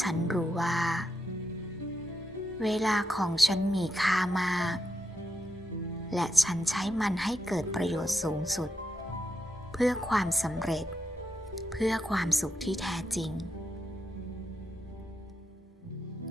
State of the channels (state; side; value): normal; both; correlation 0.84